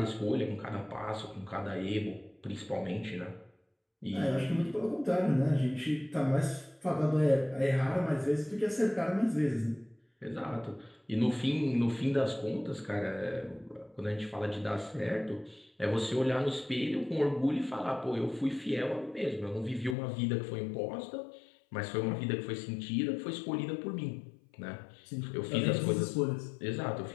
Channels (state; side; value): drops out; right; at 20.0 s